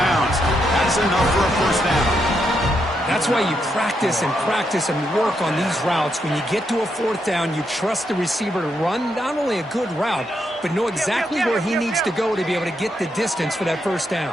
That's enough for a 1st down. That's why you practice and work on these routes. When you get to a 4th down, you trust the receiver to run not only a good route, but know exactly where he needs to go to be able to get the distance for that 1st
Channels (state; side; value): normal; both; correlation 0.80